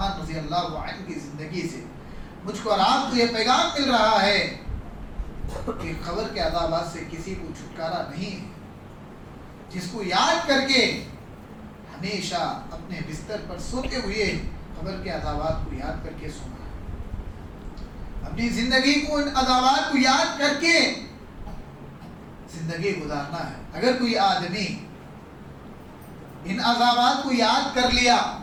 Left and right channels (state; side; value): identical; both; correlation 1.00